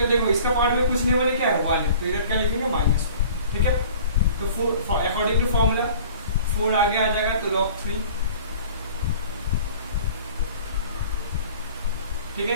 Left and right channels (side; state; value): both; inverted; correlation -0.47